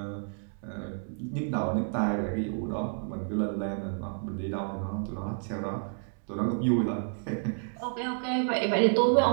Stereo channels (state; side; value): silent; left; 58 dB below the other